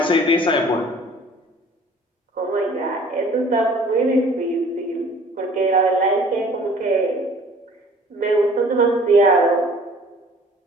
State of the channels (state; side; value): normal; both; correlation 0.51